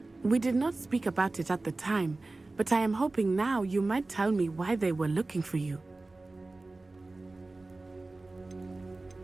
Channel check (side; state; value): left; quieter; 3.2 dB